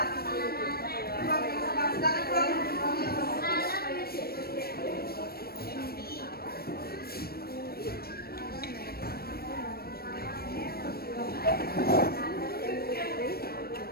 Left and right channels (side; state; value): right; late; 0.44 ms